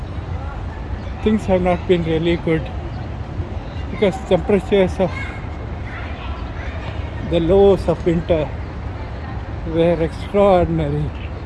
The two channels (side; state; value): both; identical; correlation 1.00